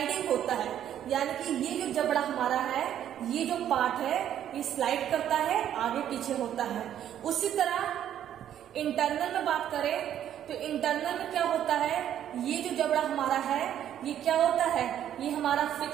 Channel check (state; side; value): quieter; left; 10.6 dB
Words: होता है। यानी कि ये जो जबड़ा हमारा है, ये जो पार्ट है, ये स्लाइड करता है, आगे पीछे होता है। उसी तरह इंटरनल में बात करें तो इंटरनल में क्या होता है, ये जो जबड़ा हमारा है, ये क्या होता है, ये हमारा